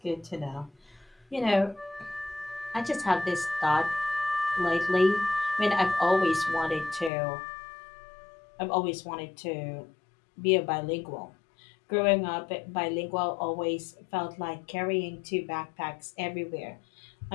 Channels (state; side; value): drops out; right; at 7.1 s